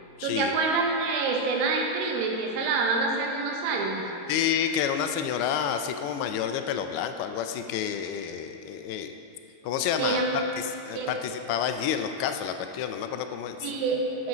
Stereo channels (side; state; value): left; late; 22 ms